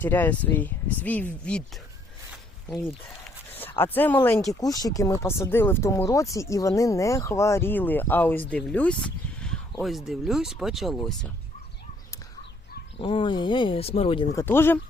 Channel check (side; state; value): both; normal; correlation 0.66